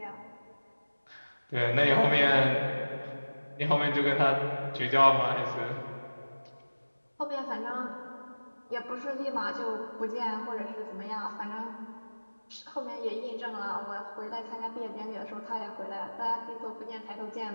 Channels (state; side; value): inverted; both; correlation -1.00